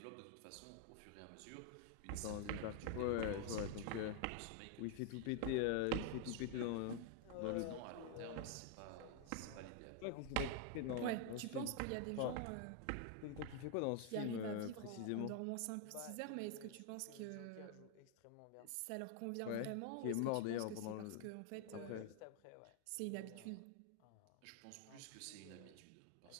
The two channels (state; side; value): different; both; correlation 0.00